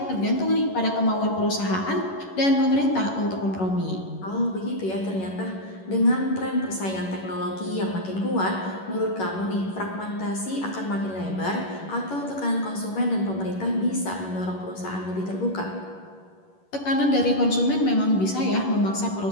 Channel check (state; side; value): late; right; 11 ms